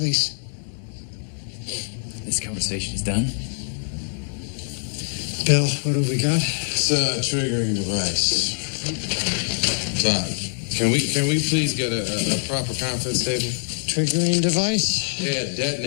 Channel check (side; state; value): right; silent; 63 dB below the other